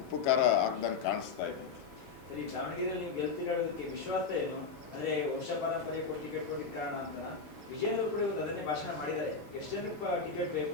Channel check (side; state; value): right; quieter; 5.0 dB